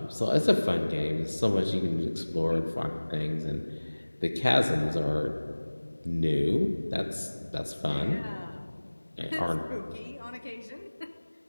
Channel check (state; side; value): inverted; both; correlation -1.00